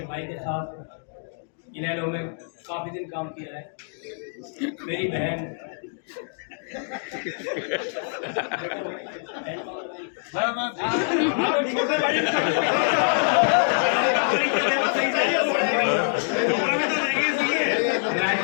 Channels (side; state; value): right; silent; 62 dB below the other